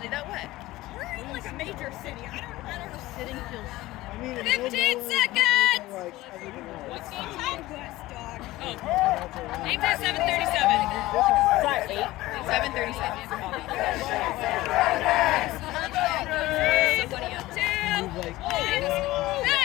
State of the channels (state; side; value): quieter; right; 17.8 dB